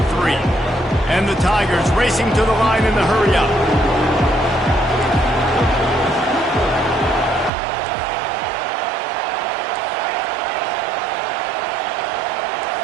And the Tigers racing to the line in the hurry-up.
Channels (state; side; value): drops out; left; at 7.5 s